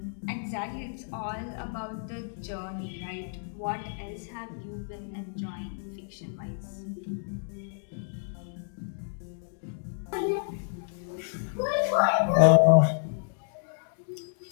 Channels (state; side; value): silent; right; digital silence